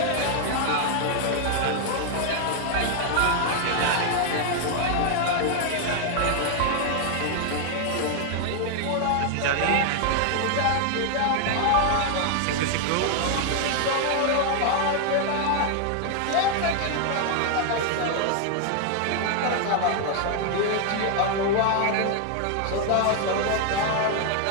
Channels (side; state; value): both; different; correlation 0.00